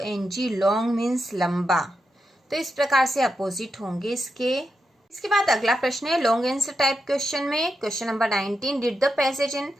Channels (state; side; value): normal; both; correlation 0.86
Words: लॉन्ग मीन्स लंबा। तो इस प्रकार से अपोजिट होंगे इसके। इसके बाद अगला प्रश्न है लॉन्ग आंसर टाइप क्वेश्चन में, question number 19 did the passage in